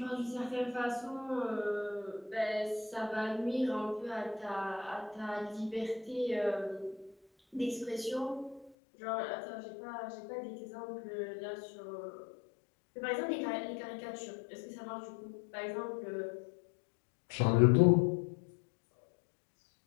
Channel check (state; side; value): drops out; right; at 8.7 s